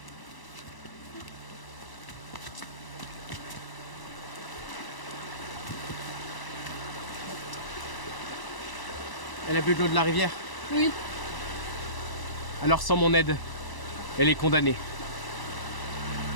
Elle a bu de l'eau de la rivière? Oui. Alors sans mon aide, elle est condamnée.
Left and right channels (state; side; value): late; right; 1.0 ms